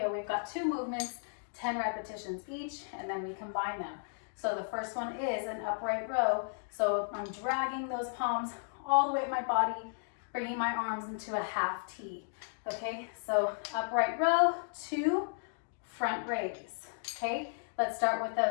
We've got 2 movements, 10 repetitions each, and then we combine them. So the first one is an upright row. So I'm dragging those palms all the way up my body, bringing my arms into a half T. Okay, so upright row, 2, front raise. Okay, let's start with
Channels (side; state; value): right; silent; digital silence